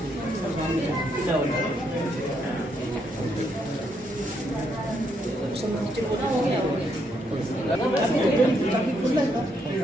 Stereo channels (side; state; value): both; normal; correlation 0.76